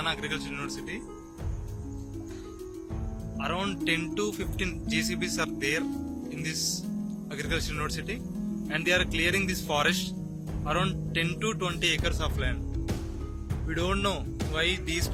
Agriculture University. Around 10 to 15 JCBs are there in this Agriculture University, and they are clearing this forest, around 10 to 20 acres of land. We don't know why these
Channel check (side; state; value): both; identical; correlation 1.00